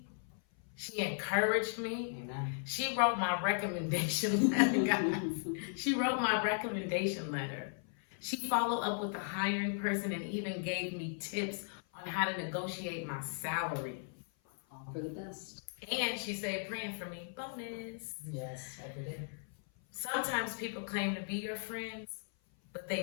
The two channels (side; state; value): right; silent; 53 dB below the other